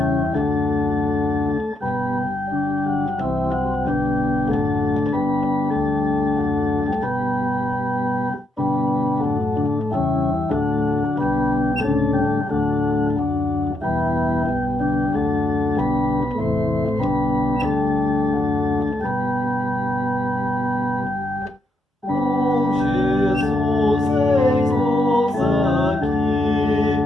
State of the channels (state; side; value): normal; both; correlation 0.81